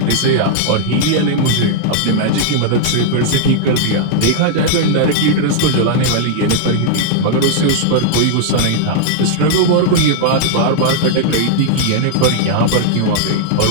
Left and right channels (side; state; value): both; different; correlation -0.01